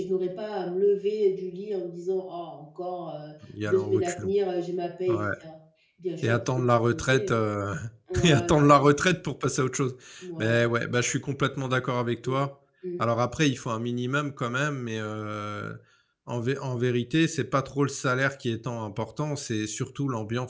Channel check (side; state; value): both; identical; correlation 1.00